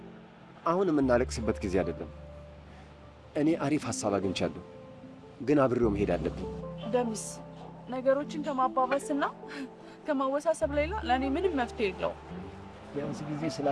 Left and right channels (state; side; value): identical; both; correlation 1.00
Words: አሁን የምናለቅስበት ጊዜ አይደለም። እኔ አሪፍ ሐሳብ አግኝቻለሁ፣ ግን አብሬው መሄድ አለብኝ። ደምስ ነገሮችን ከማባባስና ከማወሳሰብ ሌላ ለእኔ ምንም መፍትሄ የለውም። ቢያንስ ጊዜ